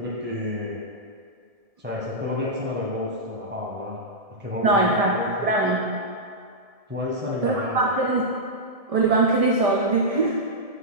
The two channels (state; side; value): late; left; 1.7 ms